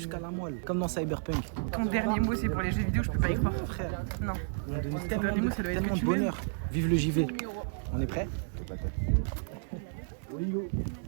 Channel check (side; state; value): left; silent; digital silence